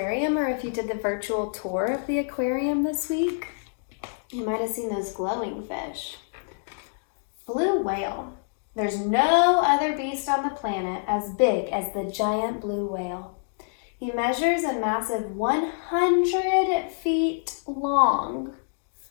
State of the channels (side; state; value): right; silent; digital silence